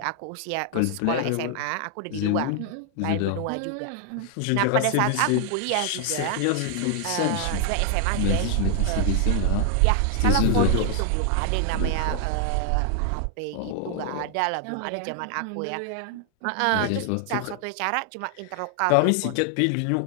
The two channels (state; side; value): different; both; correlation 0.00